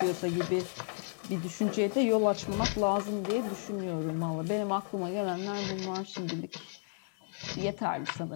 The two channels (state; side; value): silent; right; digital silence